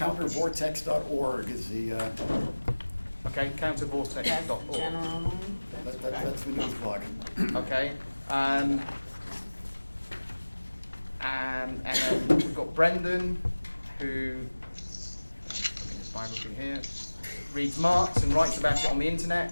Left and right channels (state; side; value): inverted; both; correlation -1.00